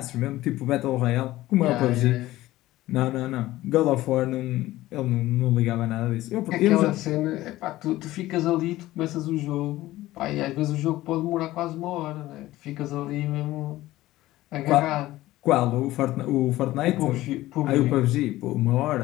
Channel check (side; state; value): right; quieter; 16.5 dB